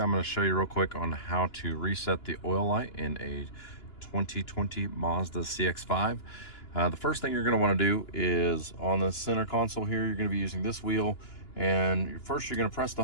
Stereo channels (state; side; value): late; right; 2.9 ms